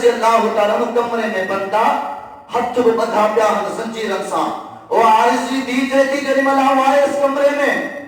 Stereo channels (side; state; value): both; identical; correlation 1.00